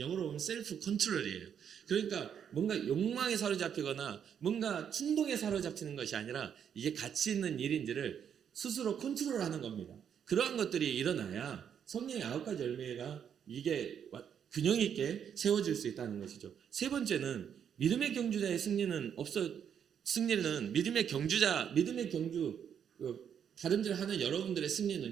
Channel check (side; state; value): left; quieter; 8.3 dB